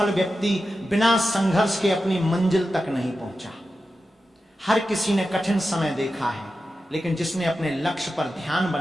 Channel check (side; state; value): both; normal; correlation 0.91